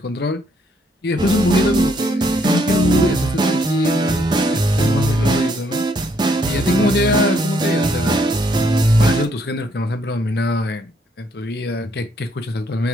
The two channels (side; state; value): both; normal; correlation 0.70